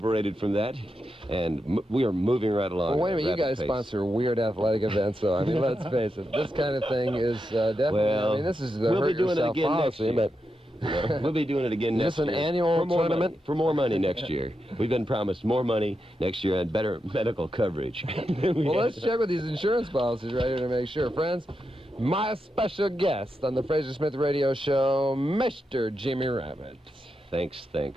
from that, and we are moving right along. Well, wait a minute. You guys sponsor weird athletic events, so I mean, let's face it. This kind of thing is definitely. Well, I mean, this is the hurt yourself policy, but. We'll be doing it again next year. Is this an annual tournament? For more money next year. We've been promised more money next year and better medical coverage. Well, let's check with these insurance policies right here to make sure. Friends, my special guest on the Frazer Smith Radio Show, Mr. Jimmy Rabbitt. Thanks. And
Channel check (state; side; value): normal; both; correlation 0.86